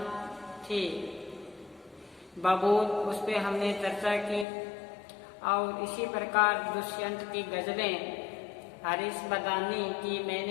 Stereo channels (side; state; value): right; drops out; at 4.5 s